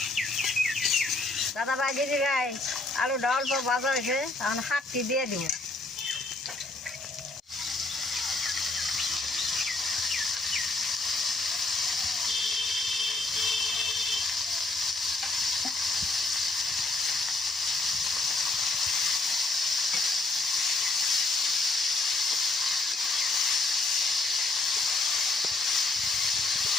দাদা ভাই দিদি ভাই আলুটা অল্প ভাজা হয়েছে এখন শাকটি দিয়ে দিব।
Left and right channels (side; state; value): right; quieter; 3.1 dB